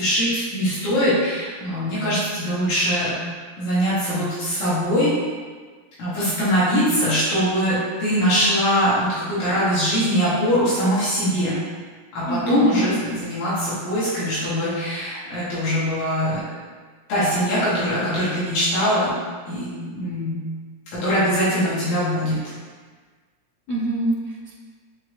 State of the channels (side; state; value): right; late; 17 ms